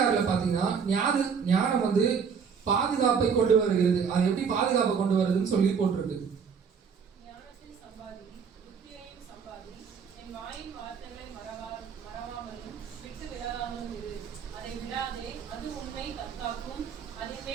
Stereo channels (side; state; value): left; quieter; 6.4 dB